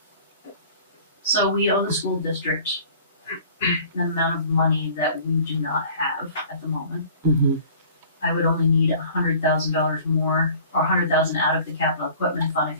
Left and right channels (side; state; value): both; inverted; correlation -0.48